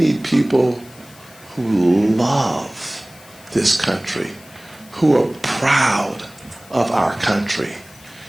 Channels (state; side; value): noise; left; hiss, 23 dB below the sound